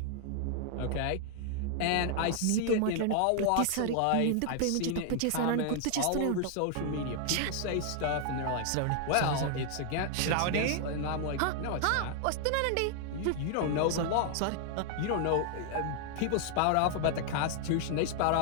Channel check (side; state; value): both; different; correlation 0.00